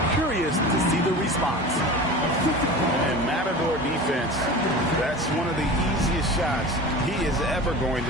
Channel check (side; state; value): both; normal; correlation 0.34